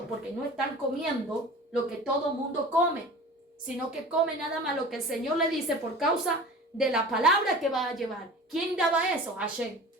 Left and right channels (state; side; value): normal; both; correlation 0.38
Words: porque no están comiendo lo que todo mundo come, sino que come nada más lo que el Señor le dice por causa de la palabra que va a llevar. ¿Quién daba eso? Hashem.